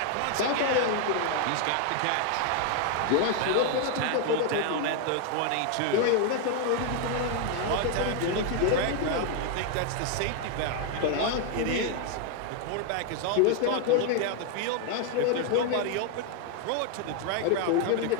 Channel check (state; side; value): different; both; correlation 0.00